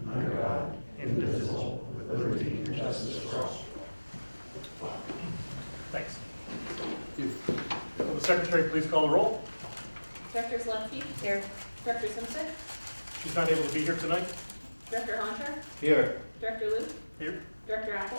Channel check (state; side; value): inverted; both; correlation -1.00